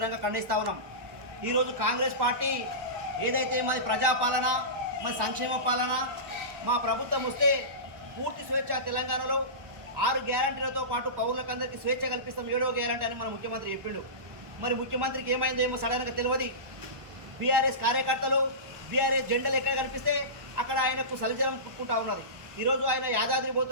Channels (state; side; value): late; left; 1.1 ms